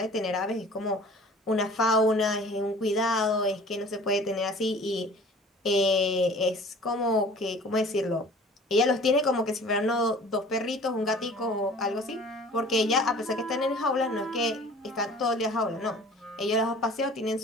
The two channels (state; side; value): normal; both; correlation 0.46